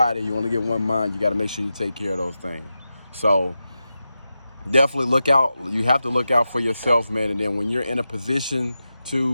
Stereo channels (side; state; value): both; inverted; correlation -0.91